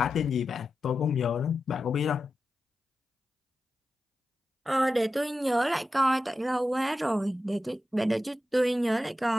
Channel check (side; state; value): both; normal; correlation 0.91